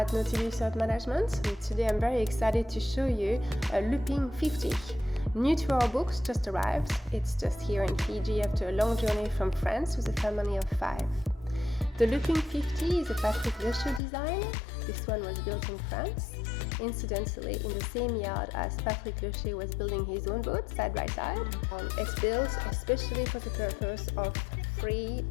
Nautilus Yacht Management, and today I'm very excited to show you a Looping 50. New to our books, just arrived. It's just here in Fiji after a long journey from France with a family of 5. The Looping 50 is a Patrick Luscher design. This one was built in France, incidentally in the same yard as Patrick Luscher was building his own boat side by side. It's built especially for the purpose of free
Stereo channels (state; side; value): drops out; right; at 14.0 s